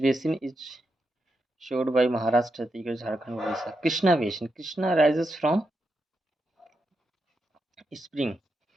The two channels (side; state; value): both; normal; correlation 0.85